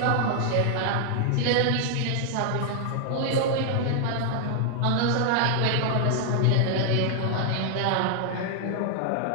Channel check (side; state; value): both; different; correlation 0.00